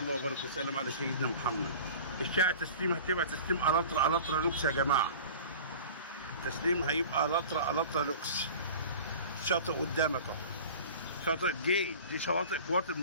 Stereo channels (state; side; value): inverted; both; correlation -0.39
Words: وبارك وسلم على سيدنا محمد. الشارع تسليم هتبقى تسليم الاترا لوكس يا جماعه. التسليم هيبقى الاترا لوكس. شاطئ قدامك اهو، شاطئ دي شواطئ القوات